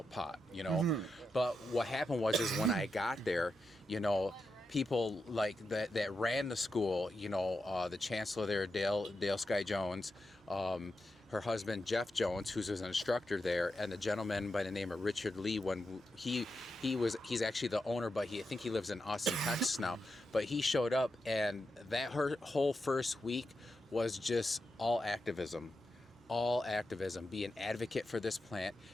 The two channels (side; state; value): both; normal; correlation 0.87